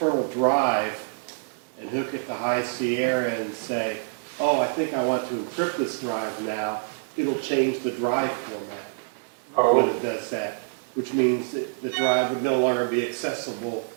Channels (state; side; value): silent; left; digital silence